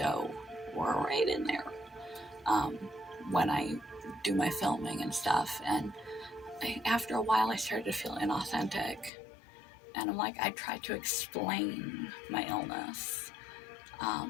we're right in there, when I do my filming and stuff. And after a while, I started to feel inauthentic. And I'm like, I tried to explain my illness.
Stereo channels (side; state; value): right; drops out; at 9.1 s